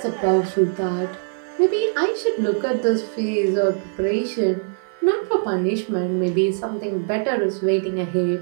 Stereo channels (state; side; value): silent; left; 57 dB below the other